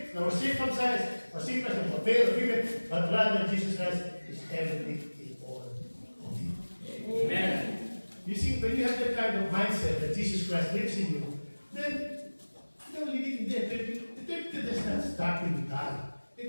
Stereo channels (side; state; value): both; inverted; correlation -1.00